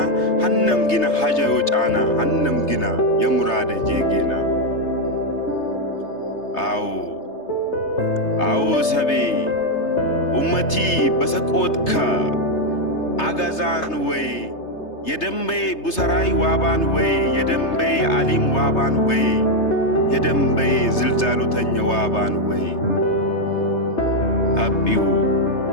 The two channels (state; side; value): late; right; 3.3 ms